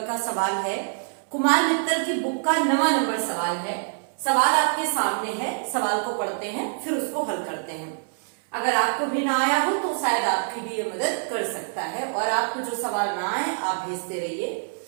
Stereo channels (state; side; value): silent; left; 61 dB below the other